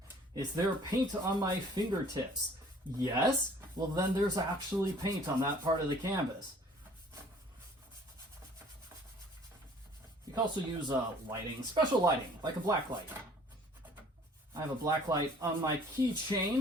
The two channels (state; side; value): normal; both; correlation 0.54